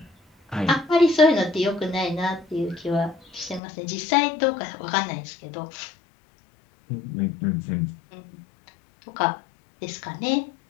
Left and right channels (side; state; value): right; drops out; at 3.6 s